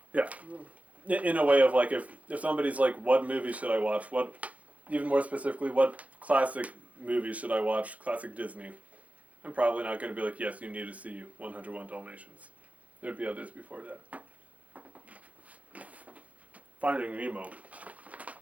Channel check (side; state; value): left; late; 0.068 ms